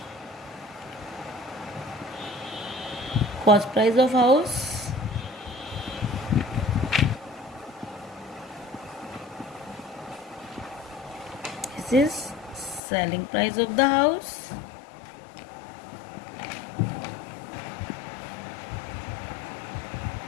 cost price of house is selling price of the house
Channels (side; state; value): right; drops out; at 12.8 s